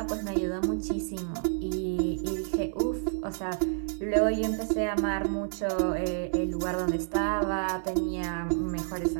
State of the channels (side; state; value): left; silent; digital silence